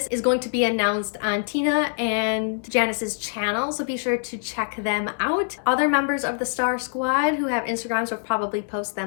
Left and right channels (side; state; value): right; silent; 62 dB below the other